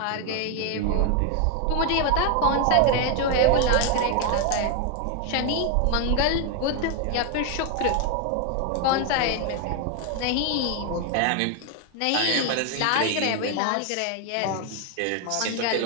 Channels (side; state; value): both; different; correlation 0.01